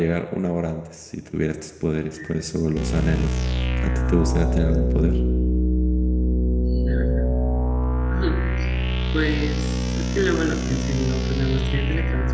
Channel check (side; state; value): both; identical; correlation 1.00